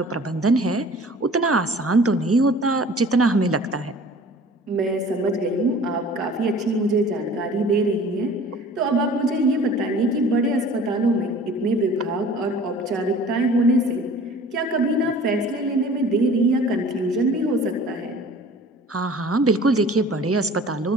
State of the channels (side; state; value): both; normal; correlation 0.47